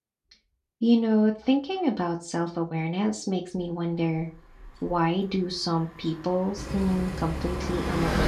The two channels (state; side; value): identical; both; correlation 1.00